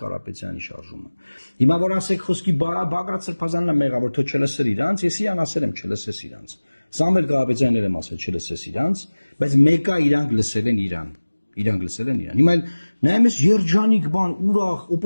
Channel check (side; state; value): both; inverted; correlation -1.00